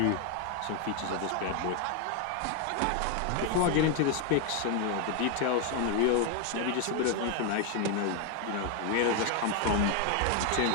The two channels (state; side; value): different; both; correlation 0.01